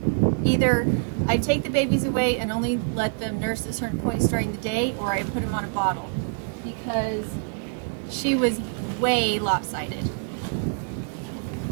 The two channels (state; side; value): silent; left; 61 dB below the other